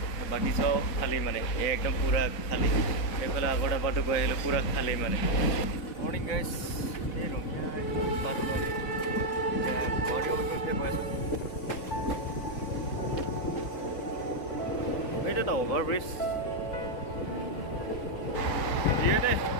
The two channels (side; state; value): right; late; 4.0 ms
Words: বাকী চব খালী মানে একদম পুৰা খালী। এইফালে আগৰ ডাবাটো গৈ আহিলোঁ পুৰা খালী মানে। মৰ্ণিং গাইজ, এই ৰঙিয়া পালোঁ আমি এতিয়া গুৱাহাটী অভিমুখে গৈ আছোঁ। এইটো এটা অভাৰব্ৰিজ দিয়ে দে,